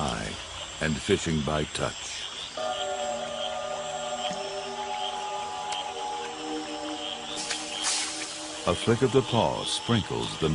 and fishing by touch. A flick of the paw sprinkles the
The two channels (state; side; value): identical; both; correlation 1.00